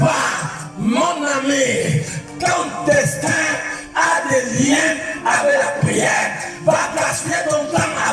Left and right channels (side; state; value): both; identical; correlation 1.00